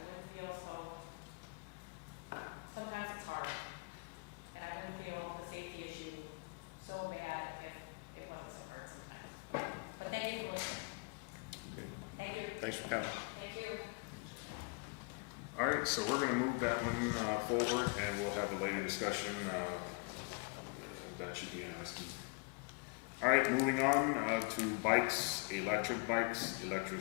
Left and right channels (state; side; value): quieter; right; 31.8 dB